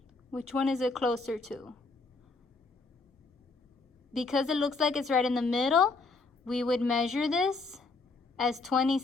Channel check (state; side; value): quieter; right; 3.8 dB